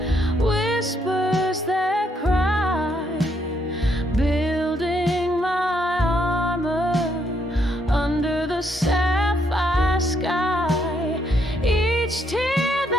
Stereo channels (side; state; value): both; normal; correlation 0.74